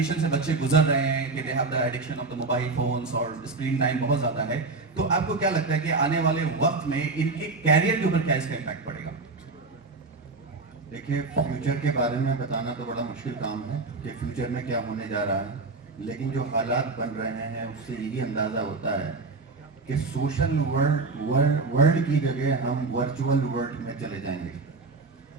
से बच्चे गुजर रहे हैं कि they have the addiction of the mobile phones और स्क्रीन टाइम बहुत ज़्यादा है, तो आपको क्या लगता है कि आने वाले वक्त में इनके कैरियर के ऊपर क्या इसका इम्पैक्ट पड़ेगा? देखिए, फ्यूचर के बारे में बताना तो बड़ा मुश्किल काम है कि फ्यूचर में क्या होने जा रहा है, लेकिन जो हालात बन रहे हैं उससे यही अंदाज़ा होता है कि सोशल वर्ल्ड की जगह हम वर्चुअल वर्ल्ड में चले जाएंगे।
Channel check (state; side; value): quieter; left; 3.9 dB